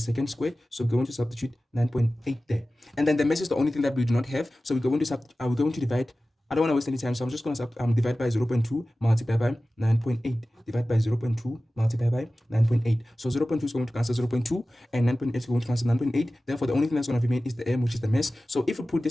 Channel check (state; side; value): normal; both; correlation 0.96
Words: squared. So we're going to substitute 9.8 there, and then the mass is the only thing that we do not have, so we're going to divide. I don't want to waste any time, so I'm just going to divide by 0.2 multiplied by 9.8. Divide by 0.2 multiplied by 9.8. So 0.2 is going to cancel 0.2, and 9.8 is going to cancel 9.8. Therefore, the only thing that's going to remain is the m, which is the mass. So if we put